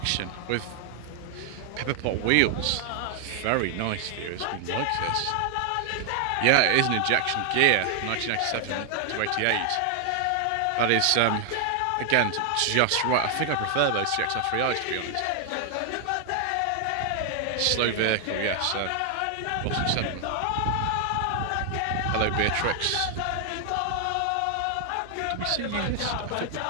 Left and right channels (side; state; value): both; different; correlation 0.00